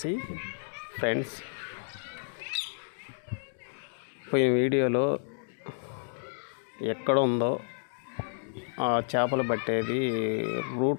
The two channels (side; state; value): right; silent; digital silence